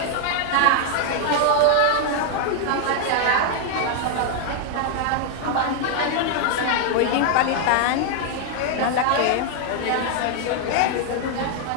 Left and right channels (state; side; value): different; both; correlation 0.00